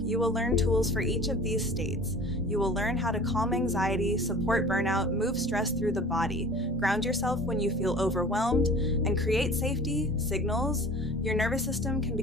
you will learn tools for each of these states. You will learn how to calm anxiety, support burnout, move stress through the body, ground yourself when you feel overwhelmed, and create safety signals your nervous system can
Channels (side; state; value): both; normal; correlation 0.42